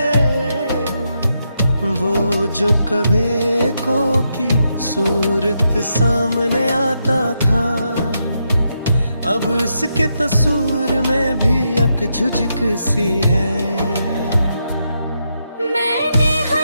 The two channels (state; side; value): inverted; both; correlation -0.82